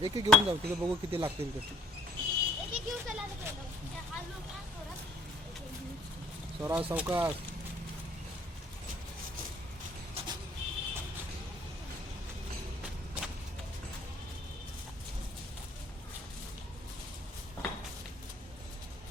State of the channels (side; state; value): both; normal; correlation 0.59